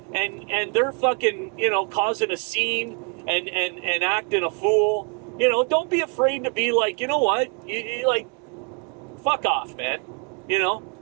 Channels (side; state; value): left; quieter; 36.0 dB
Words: and they're fucking, you know, causing a scene and acting a fool, you know, don't be afraid to be like, you know what, you like, fuck off, man. You know,